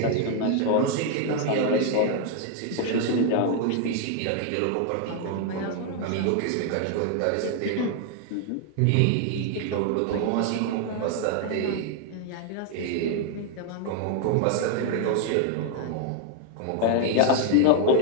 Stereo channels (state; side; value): different; both; correlation 0.00